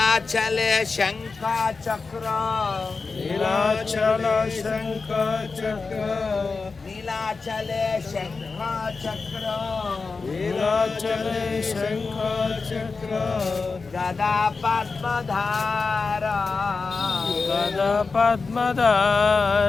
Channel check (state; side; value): quieter; right; 4.4 dB